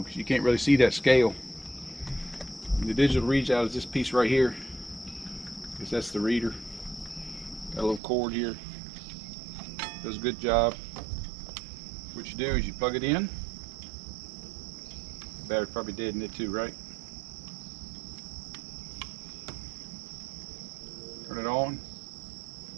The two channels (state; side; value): drops out; left; at 8.0 s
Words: you can't really see that scale. And the digital readout is this piece right here. Because that's the reader. Got a little cord here. Does a good job. What you do is you plug it in. The battery's probably dead in it too, right? Turn it on.